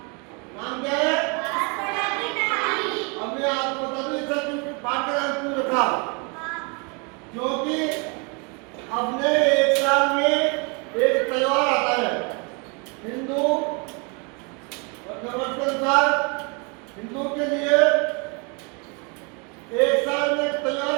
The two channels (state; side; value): quieter; left; 32.9 dB